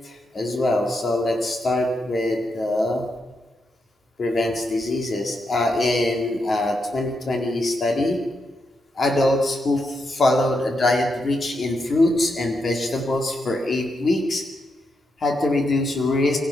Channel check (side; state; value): both; normal; correlation 0.83